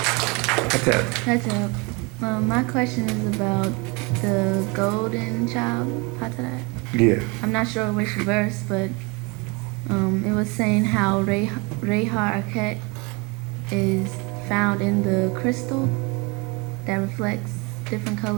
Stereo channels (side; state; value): left; quieter; 28.7 dB